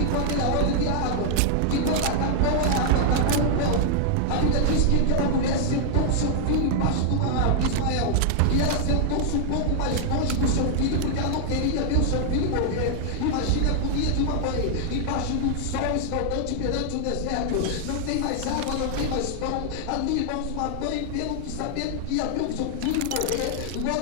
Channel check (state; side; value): different; both; correlation -0.01